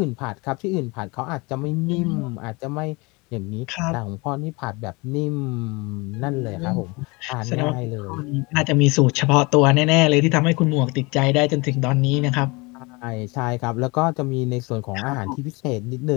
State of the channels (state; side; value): quieter; right; 26.3 dB